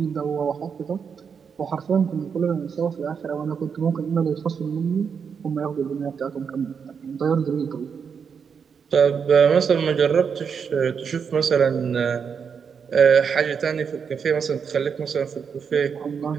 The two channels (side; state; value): left; quieter; 6.5 dB